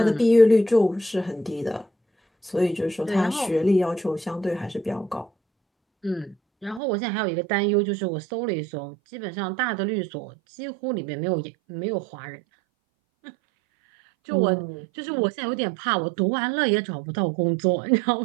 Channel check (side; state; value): left; drops out; at 6.8 s